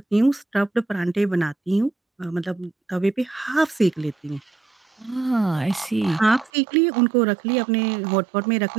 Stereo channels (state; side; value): drops out; left; at 6.5 s